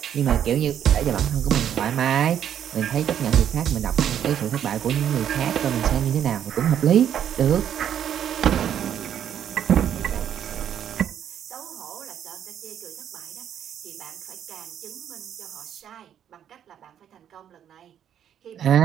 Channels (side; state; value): left; quieter; 9.6 dB